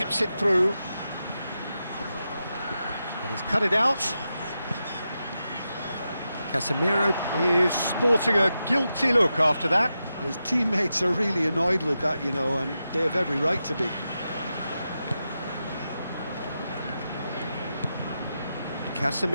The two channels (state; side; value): inverted; both; correlation -0.89